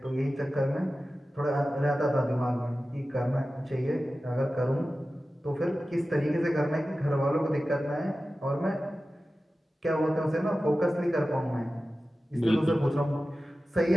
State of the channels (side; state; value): both; normal; correlation 0.95